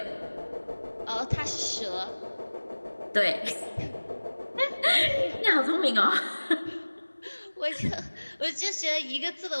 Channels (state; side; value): inverted; both; correlation -1.00